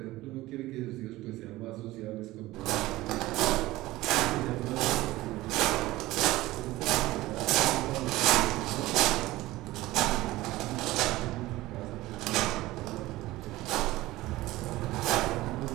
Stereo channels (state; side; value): quieter; left; 17.9 dB